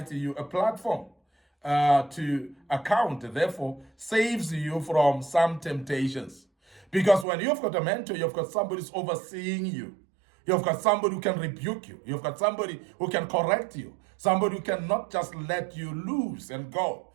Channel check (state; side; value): drops out; left; at 7.2 s